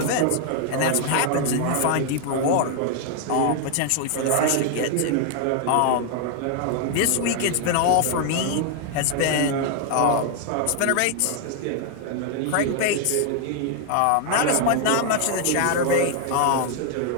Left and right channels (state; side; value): different; both; correlation 0.00